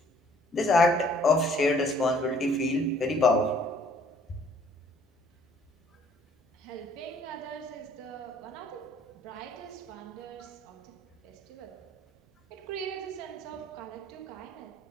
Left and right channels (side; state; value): both; normal; correlation 0.59